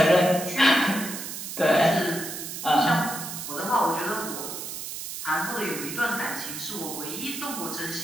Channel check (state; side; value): noise; right; hiss, 7 dB below the sound